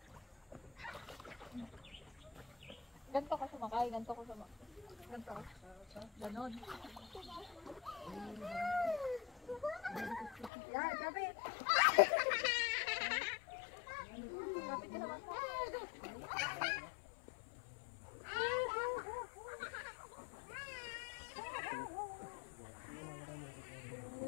Ganto ka sumakay. Ganto ka sumakay. Ganto ka. Ganon. Yan, kapit. Kapit ka sa bangka.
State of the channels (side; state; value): right; drops out; at 10.5 s